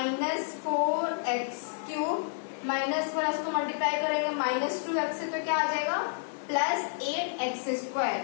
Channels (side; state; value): right; silent; digital silence